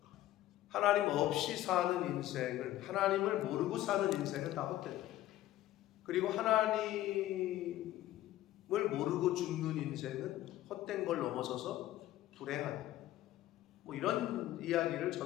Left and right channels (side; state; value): right; quieter; 14.4 dB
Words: 하나님 없이 사는 인생을, 하나님을 모르고 사는 인생은 다 헛되다. 그리고 하나님을 모르고 죽는 인생은 헛된 걸 넘어서서 불행하다. 뭐 이런 이야기를